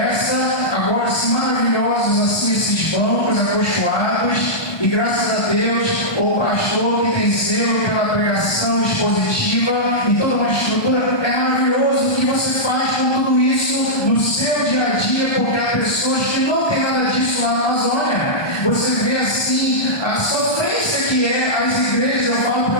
agora assim maravilhosos assim esses bancos acolchoados, e graças a Deus o pastor que tem zelo pela pregação expositiva e toda uma estrutura, é maravilhoso o que você faz com tudo isso no seu dia a dia, porque há pessoas que não tem nada disso lá na Amazônia. Você vê assim a sofrência que é as igrejas. Eu falo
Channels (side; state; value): right; late; 1.2 ms